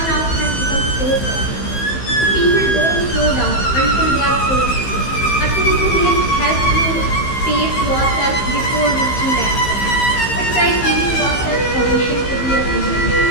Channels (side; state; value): right; late; 15 ms